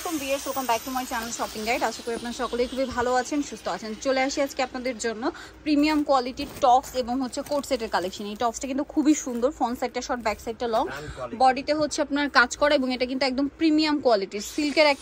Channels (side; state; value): both; identical; correlation 1.00